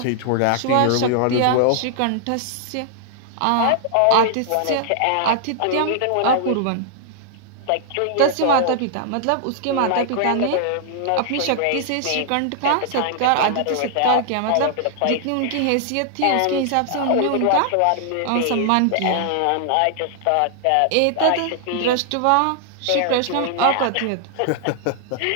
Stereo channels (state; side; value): different; both; correlation -0.01